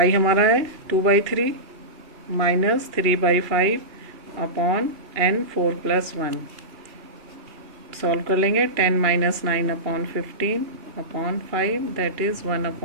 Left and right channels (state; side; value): late; left; 2.8 ms